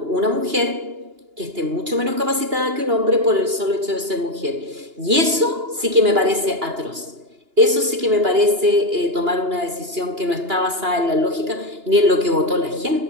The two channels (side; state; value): left; late; 2.9 ms